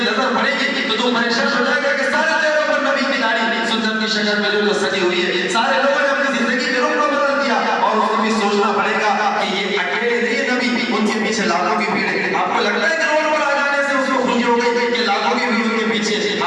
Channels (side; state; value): both; identical; correlation 1.00